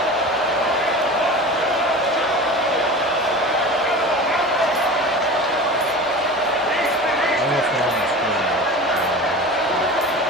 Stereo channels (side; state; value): both; normal; correlation 0.33